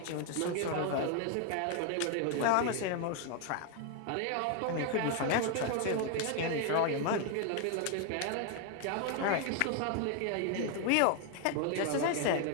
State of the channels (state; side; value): different; both; correlation 0.00